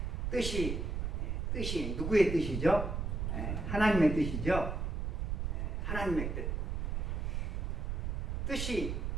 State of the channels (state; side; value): noise; right; rumble, 1 dB below the sound